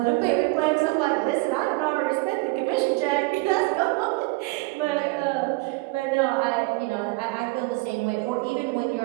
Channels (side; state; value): left; quieter; 24.9 dB